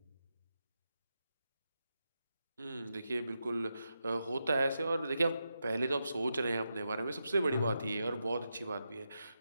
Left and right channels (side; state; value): both; inverted; correlation -0.87